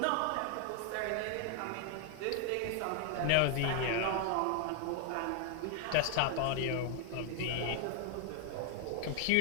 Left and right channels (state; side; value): different; both; correlation 0.00